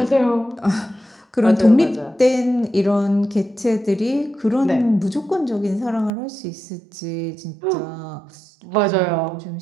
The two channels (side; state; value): left; drops out; at 6.1 s